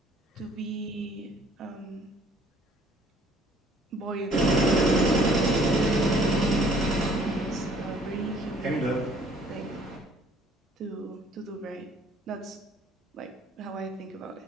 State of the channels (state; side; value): normal; both; correlation 0.58